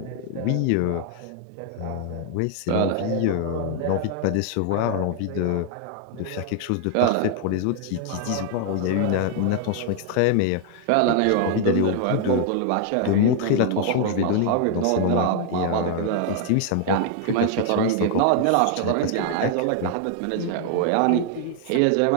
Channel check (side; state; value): both; different; correlation 0.00